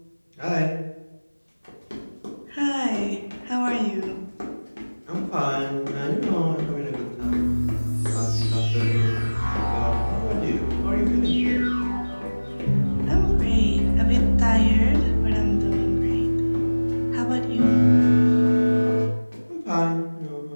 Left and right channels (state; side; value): inverted; both; correlation -1.00